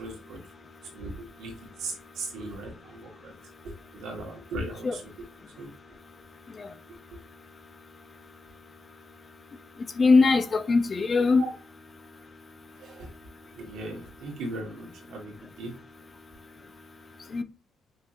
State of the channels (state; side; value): quieter; right; 3.2 dB